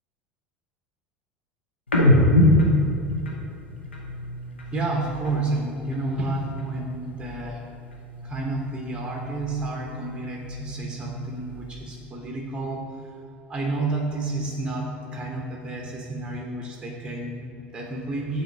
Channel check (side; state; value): both; normal; correlation 0.14